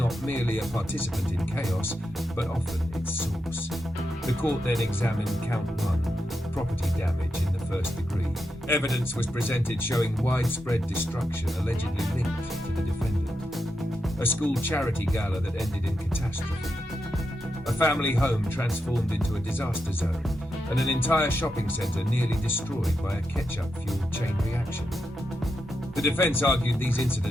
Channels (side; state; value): both; normal; correlation 0.86